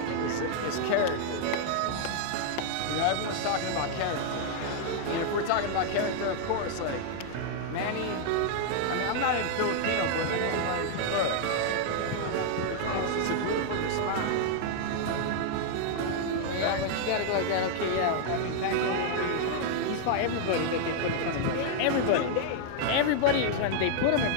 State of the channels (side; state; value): both; different; correlation 0.00